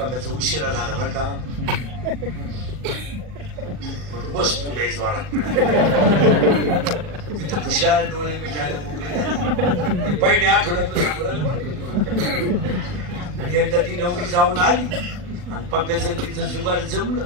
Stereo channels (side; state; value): left; late; 40 ms